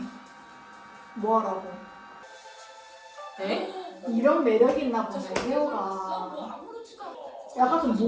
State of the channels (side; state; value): both; identical; correlation 1.00